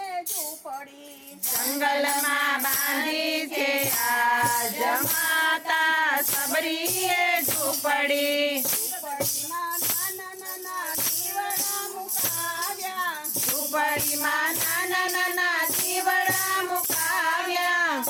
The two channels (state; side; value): identical; both; correlation 1.00